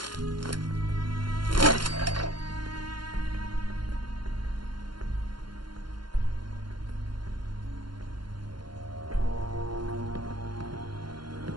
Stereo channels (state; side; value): late; left; 0.72 ms